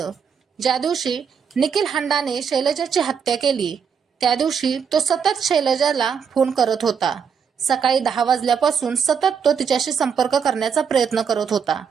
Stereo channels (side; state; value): left; quieter; 6.8 dB